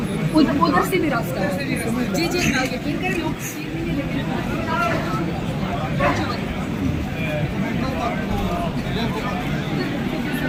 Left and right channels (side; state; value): both; identical; correlation 1.00